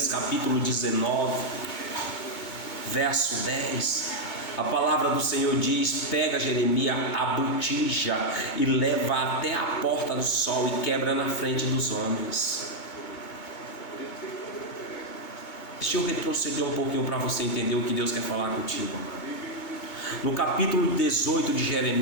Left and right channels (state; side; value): late; right; 2.2 ms